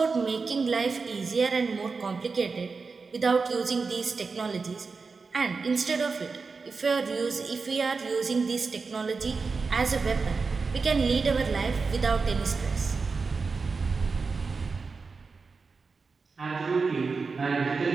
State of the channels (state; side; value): quieter; left; 4.6 dB